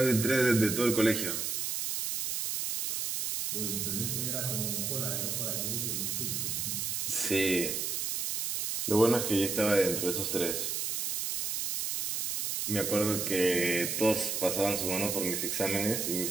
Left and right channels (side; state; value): right; noise; hiss, 1 dB below the sound